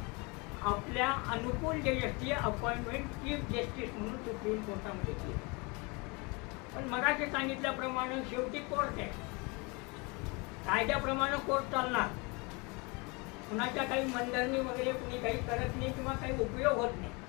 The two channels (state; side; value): quieter; right; 28.7 dB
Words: आपल्या अनुकूल जजेसची अपॉइंटमेंट चीफ जस्टिस म्हणून सुप्रीम कोर्टामध्ये केली. पण मगाशी सांगितल्याप्रमाणे शेवटी कोर्ट आहे, कायद्याप्रमाणे कोर्ट चालणार. कुणाच्या काही मनधरणी वगैरे कुणी काही करत नाही किंवा काही उपयोग होत नाही.